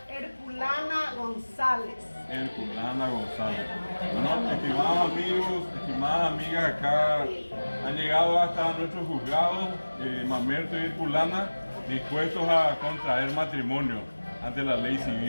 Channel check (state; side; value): inverted; both; correlation -1.00